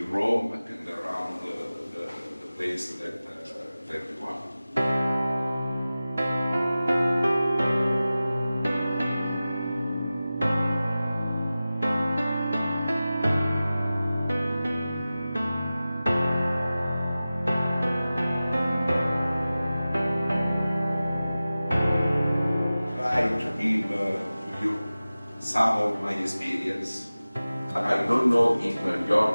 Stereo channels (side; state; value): both; inverted; correlation -0.96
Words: Rome and around the place that you want. To give to you some of my experience. I don't know in